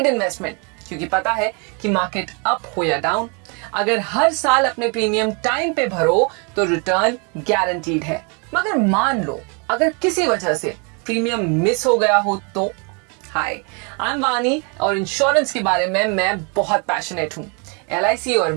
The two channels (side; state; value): left; quieter; 34.4 dB